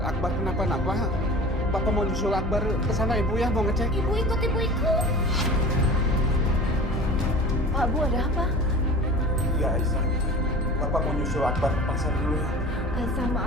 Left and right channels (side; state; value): both; normal; correlation 0.39